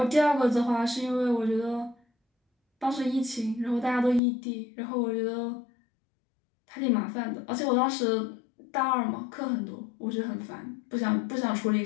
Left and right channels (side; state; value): right; drops out; at 4.2 s